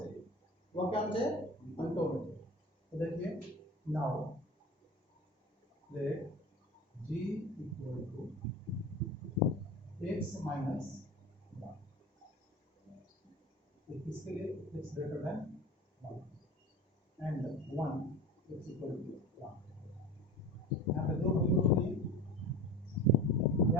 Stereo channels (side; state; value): both; normal; correlation 0.33